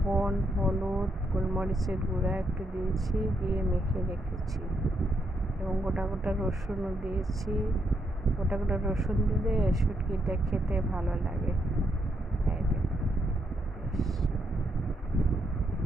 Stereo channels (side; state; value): both; normal; correlation 0.78